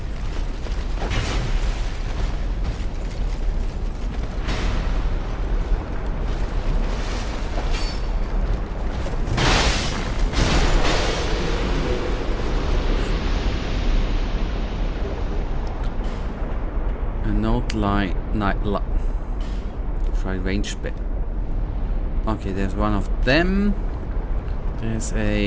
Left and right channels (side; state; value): both; identical; correlation 1.00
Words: Try range bit. Okay, there's one of them. There's